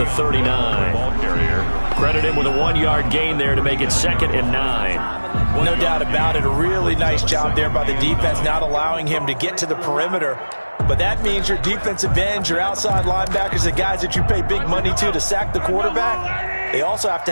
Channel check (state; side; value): inverted; both; correlation -1.00